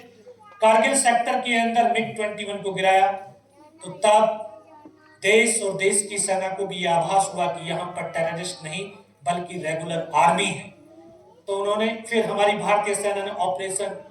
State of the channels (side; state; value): both; identical; correlation 1.00